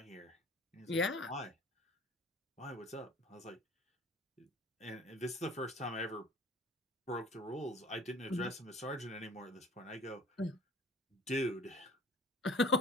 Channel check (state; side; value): normal; both; correlation 0.46